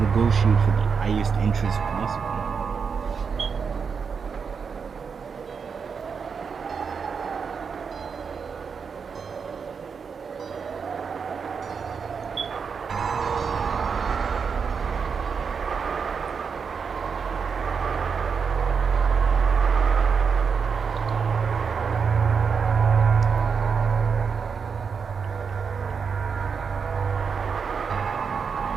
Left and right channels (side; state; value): left; quieter; 5.9 dB